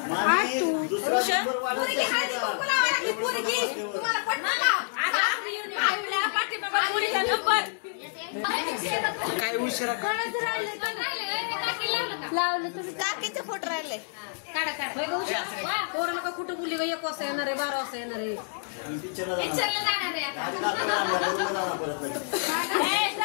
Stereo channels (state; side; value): silent; right; digital silence